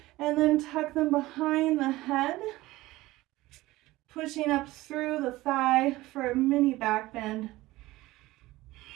and then tuck them behind the head. Pushing up through the thigh for a mini back bend.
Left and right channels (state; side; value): quieter; left; 18.4 dB